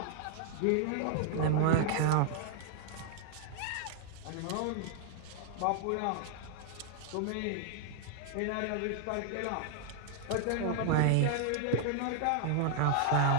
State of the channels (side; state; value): both; different; correlation 0.00